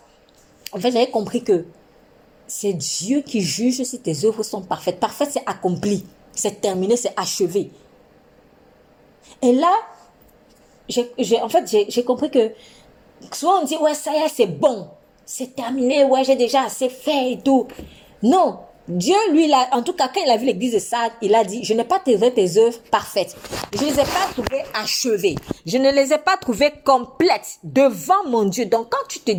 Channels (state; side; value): identical; both; correlation 1.00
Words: en fait, j'avais compris que c'est Dieu qui juge si tes œuvres sont parfaites. Parfait, c'est accompli, c'est terminé, c'est achevé. Et là, j'ai compris que souvent on dit, ouais, ça y est, c'est bon, c'est terminé, ouais, j'ai déjà assez fait et tout. Non, Dieu, lui, en tout cas, quand il a vu l'église de Sardes, il a dit, je n'ai pas trouvé tes œuvres parfaites. Je ne les ai pas trouvées achevées. Je ne les ai pas trouvées complètes devant mon Dieu. Donc, quand tu te